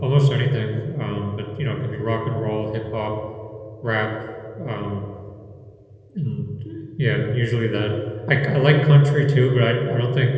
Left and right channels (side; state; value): both; identical; correlation 1.00